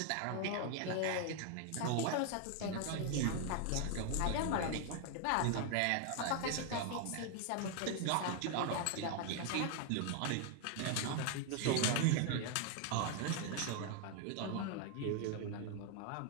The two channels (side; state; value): both; different; correlation 0.00